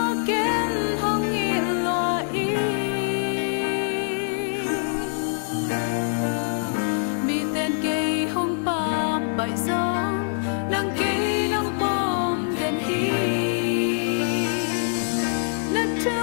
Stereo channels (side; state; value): right; silent; digital silence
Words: kiến hong nghịt lo y mi tên cây hong pa bãi gió nàng cây nong bom đèn hi nát